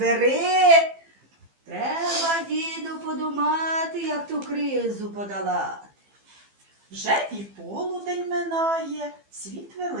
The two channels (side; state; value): left; late; 15 ms